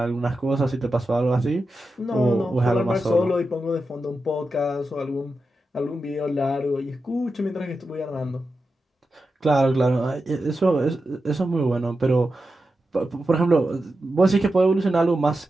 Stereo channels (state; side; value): normal; both; correlation 0.90